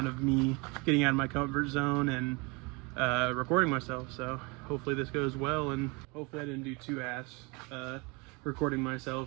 of me getting out of my comfort zone and recording myself. So hopefully this goes well, and hopefully I didn't do too ass recording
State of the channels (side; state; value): left; quieter; 28.4 dB